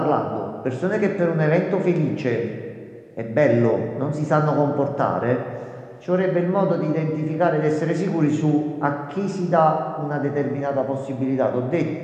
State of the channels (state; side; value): identical; both; correlation 1.00